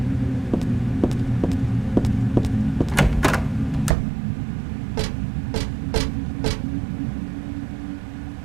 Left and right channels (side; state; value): left; drops out; at 3.9 s